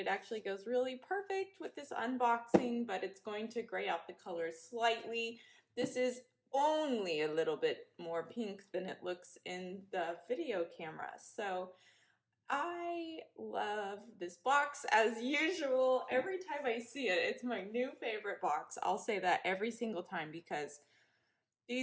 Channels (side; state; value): both; identical; correlation 1.00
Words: actually goes really perfect with this unboxing, but it's going to gray out the colors slightly. This is only a little bit more pink than it looks in the video camera. So I love this box as usual. Every time I see it, it's my new favorite box. I'll say that every single time because